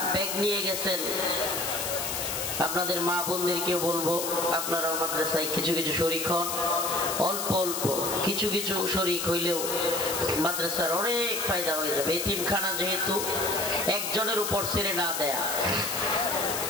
ব্যাগ নিয়ে গেছেন, আপনাদের মা বোনদেরকেও বলবো, আপনারাও মাদ্রাসায় কিছু কিছু শরীক হন। অল্প অল্প কিছু কিছু শরীক হইলেও মাদ্রাসার অনেক ফায়দা হয়ে যাবে। এতিমখানা যেহেতু একজনের উপর ছেড়ে না দেয়া,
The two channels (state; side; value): noise; left; hiss, 3 dB below the sound